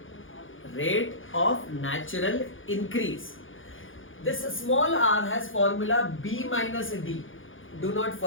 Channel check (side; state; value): right; late; 0.58 ms